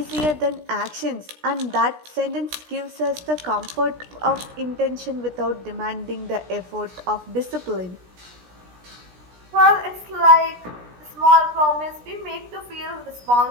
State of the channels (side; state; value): left; late; 17 ms